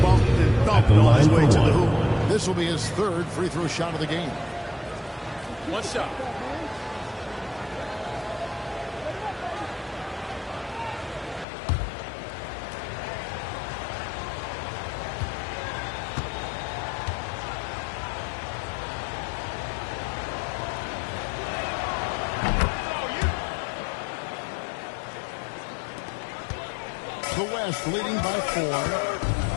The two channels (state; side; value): drops out; right; at 11.5 s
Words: bumped and At thumped the on his line way for to the one. hoop. This will be his third free throw shot of the game. One shot. The West leading by 4.